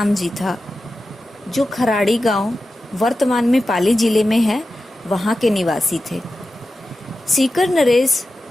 जी था, जो खराड़ी गांव वर्तमान में पाली जिले में है, वहाँ के निवासी थे। सीकर नरेश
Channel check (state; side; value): normal; both; correlation 0.92